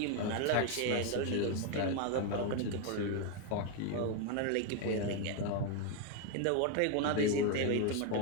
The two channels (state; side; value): different; both; correlation 0.01